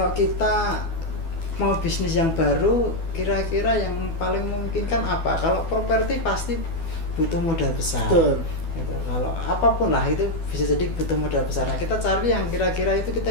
kita mau bisnis yang baru, kira-kira yang paling memungkinkan apa? Kalau properti pasti butuh modal besar. Betul. Gitu. Kalau apapun lah itu bisa jadi butuh modal besar. Nah, kita cari yang kira-kira itu kita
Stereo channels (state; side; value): late; right; 12 ms